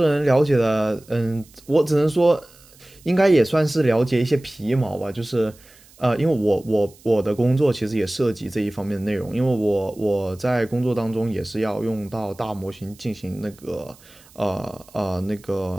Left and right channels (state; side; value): noise; right; hiss, 26 dB below the sound